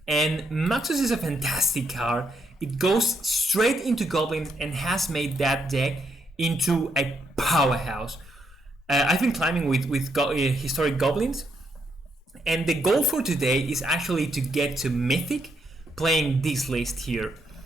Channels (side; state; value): both; normal; correlation 0.77